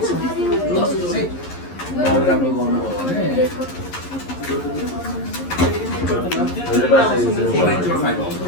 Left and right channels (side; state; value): right; late; 11 ms